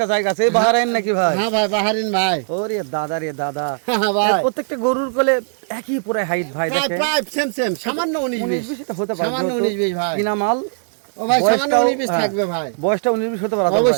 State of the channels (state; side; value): silent; left; digital silence